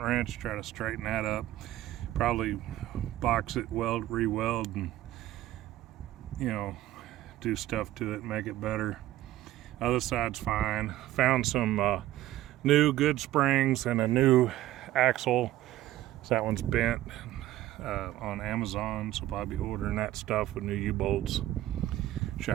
try to straighten that up. Probably box it, weld, re-weld, and do stuff to it, make it better. Other side's fine. Found some new good springs and a new axle. So that one's bent on Amazon, so I'll be ordering that stuff with new U-bolts,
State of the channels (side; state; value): left; quieter; 14.9 dB